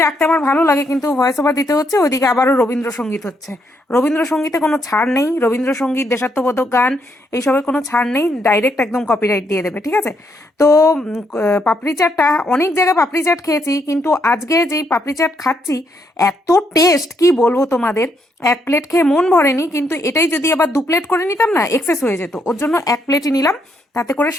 রাখতে আমার ভালো লাগে, কিন্তু ভয়েস ওভার দিতে হচ্ছে। ওইদিকে আবারও রবীন্দ্রসঙ্গীত হচ্ছে। রবীন্দ্রসঙ্গীতে কোনো ছাড় নেই। রবীন্দ্রসঙ্গীত, দেশাত্মবোধক গান, এইসবের কোনো ছাড় নেই। ডাইরেক্ট একদম কপিরাইট দিয়ে দেবে, ঠিক আছে? তো পাপড়ি চাটটা, অনেক জায়গায় পাপড়ি চাট খেয়েছি, কিন্তু আজকে যেই পাপড়ি চাট খাচ্ছি এত টেস্ট, কি বলবো তোমাদের। 1 প্লেট খেয়ে মন ভরেনি, কিন্তু এটাই যদি আবার 2 প্লেট করে নিতাম না, এক্সেস হয়ে যেত। ওর জন্য 1 প্লেটই নিলাম, তাতে করে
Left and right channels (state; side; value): normal; both; correlation 0.75